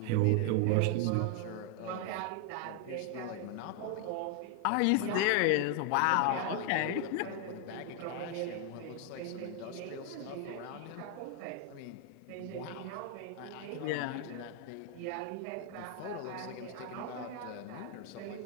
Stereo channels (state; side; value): different; both; correlation 0.00